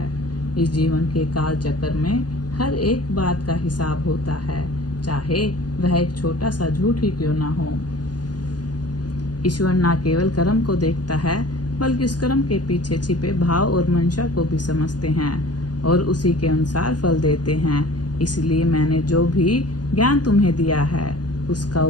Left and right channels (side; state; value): right; late; 0.69 ms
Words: इस जीवन के काल चक्र में हर एक बात का हिसाब होता है, चाहे वह एक छोटा सा झूठ ही क्यों ना हो। ईश्वर न केवल कर्म को देखता है, बल्कि उस कर्म के पीछे छिपे भाव और मंशा को भी समझते हैं और उसी के अनुसार फल देते हैं। इसलिए मैंने जो भी ज्ञान तुम्हें दिया है, उसका